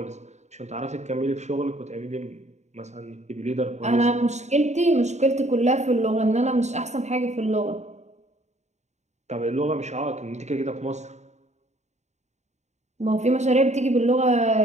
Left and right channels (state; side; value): late; left; 0.33 ms